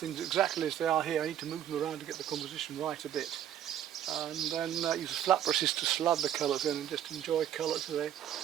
exactly as they are here. I need to move them around to get the composition right a bit. And then use the flat brushes to slab the colours in and just enjoy colour today.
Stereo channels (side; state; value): left; quieter; 10.6 dB